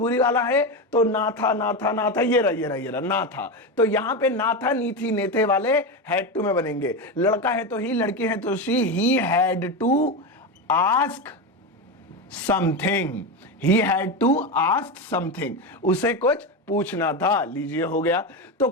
वाला है, तो ना था ना था ना था, ये रहा ना था। तो यहां पे ना था नी थी ने थे वाले हैड टू में बनेंगे। लड़का है तो ही, लड़की है तो she, he had to ask something, he had to ask something, उसे कुछ पूछना था। लीजिए हो गया। तो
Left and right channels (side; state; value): both; normal; correlation 0.16